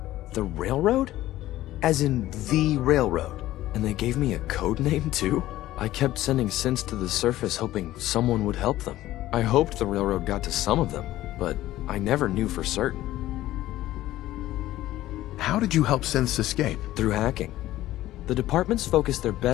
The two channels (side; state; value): right; quieter; 15.1 dB